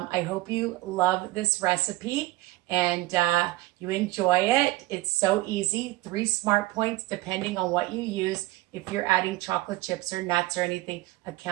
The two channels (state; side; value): quieter; left; 18.9 dB